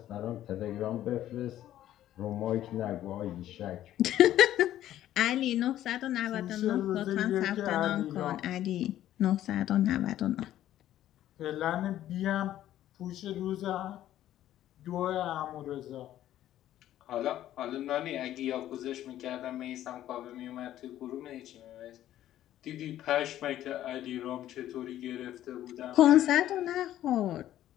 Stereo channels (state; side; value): quieter; right; 12.7 dB